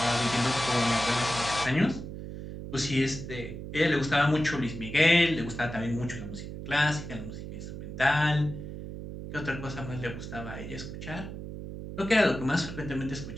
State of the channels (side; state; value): right; noise; hum, 9 dB below the sound